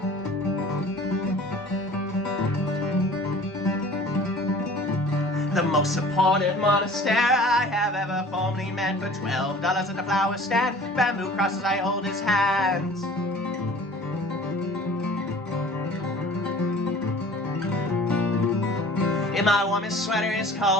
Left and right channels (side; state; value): both; normal; correlation 0.46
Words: The most supportive monastery I have ever formerly met. For $12 at the flower stand, bamboo crosses I hold his hands. And my woman's sweater is